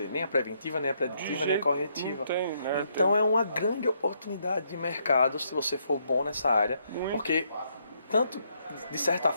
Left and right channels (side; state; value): both; inverted; correlation -0.75